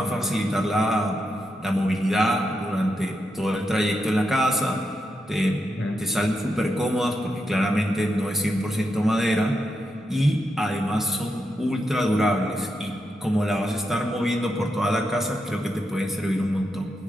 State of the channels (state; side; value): normal; both; correlation 0.84